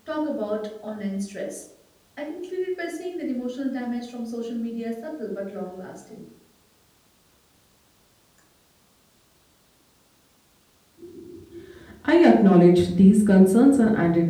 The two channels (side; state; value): both; identical; correlation 1.00